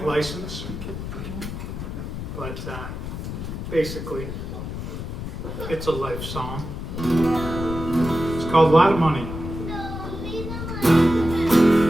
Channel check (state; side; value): noise; left; rumble, 7 dB below the sound